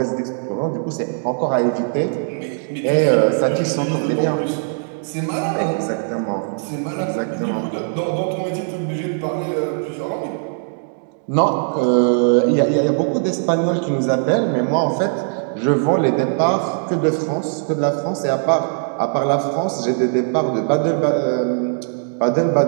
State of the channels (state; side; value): silent; left; digital silence